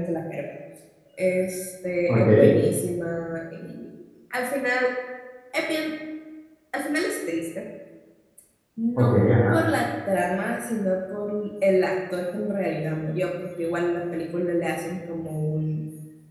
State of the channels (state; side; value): identical; both; correlation 1.00